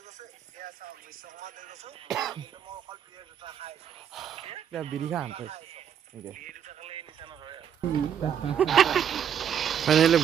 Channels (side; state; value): left; quieter; 8.7 dB